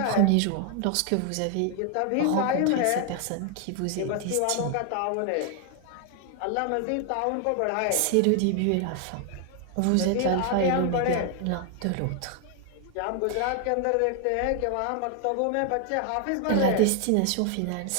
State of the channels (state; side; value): different; both; correlation 0.00